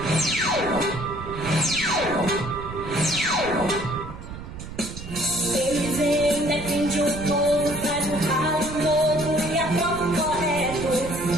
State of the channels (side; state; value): right; noise; rumble, 11 dB below the sound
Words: Eles ainda defendem o povo, faz um ralo novo e aprova o correto.